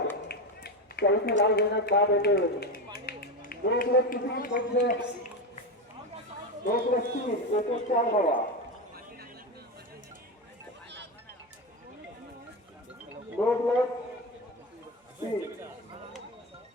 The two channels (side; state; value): both; normal; correlation 0.16